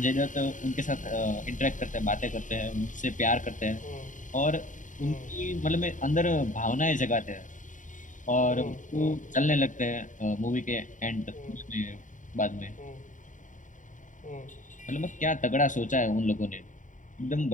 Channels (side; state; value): right; late; 0.37 ms